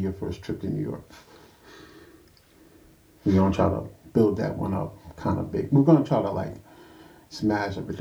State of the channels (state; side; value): identical; both; correlation 1.00